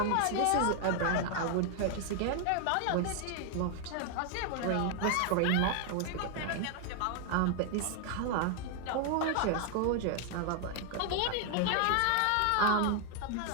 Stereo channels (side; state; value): both; different; correlation 0.00